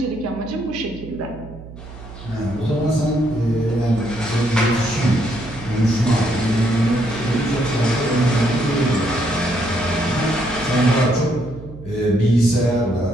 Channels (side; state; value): right; noise; hum, 15 dB below the sound